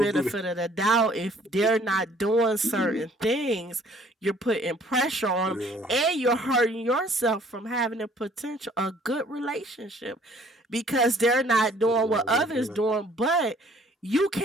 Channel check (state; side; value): normal; both; correlation 0.58